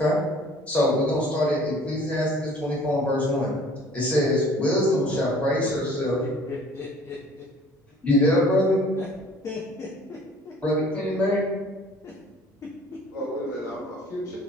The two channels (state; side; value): normal; both; correlation 0.52